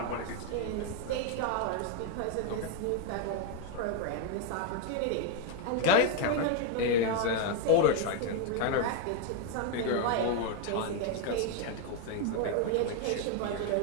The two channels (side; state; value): both; different; correlation 0.01